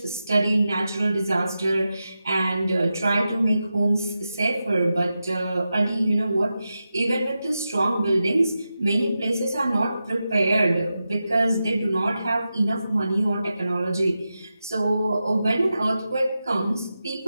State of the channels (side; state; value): both; inverted; correlation -0.91